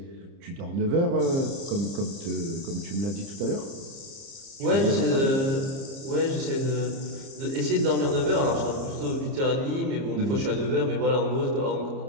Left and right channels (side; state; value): left; late; 30 ms